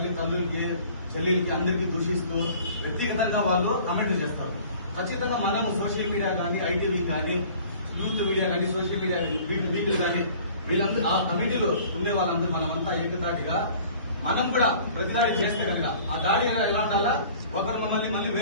చెల్లెలకి అందరికీ దూషిస్తూ వ్యక్తిగతంగా వాళ్ళు కమెంట్లు చేస్తారు. ఖచ్చితంగా మనము సోషల్ మీడియా కానీ ఐటీవీ కానీ యూత్ మీడియా కానీ సోషల్ మీడియా వీకులు కానీ వీళ్ళందరూ ఆ కమిటీలో ఉండే వాళ్ళందరూ మనమంతా ఏకతాటిగా మనం కూడా ప్రతిదాడి చేస్తే కనుక ఆ దాడి ఎలా ఉండాలా, ఒకరు మళ్ళీ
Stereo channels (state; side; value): inverted; both; correlation -0.49